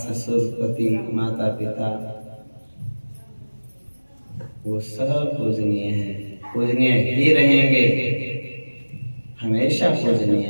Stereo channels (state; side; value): inverted; both; correlation -1.00